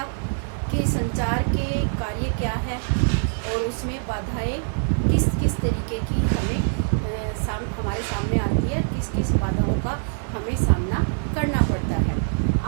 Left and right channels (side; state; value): left; silent; 57 dB below the other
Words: कि संचार के कार्य क्या है और उसमें बाधाएं किस किस तरीके की हमारे सामने आती है, किस किस बाधाओं का हमें सामना करना पड़ता है।